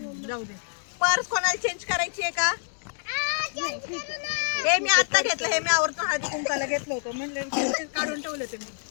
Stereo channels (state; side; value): silent; right; digital silence